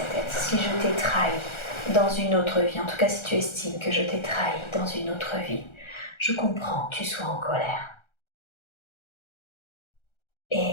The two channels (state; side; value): late; right; 1.3 ms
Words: être, si je t'ai trahi dans une autre vie, en tout cas si tu estimes que je t'ai trahi dans une autre vie, je comprends que tu sois en colère.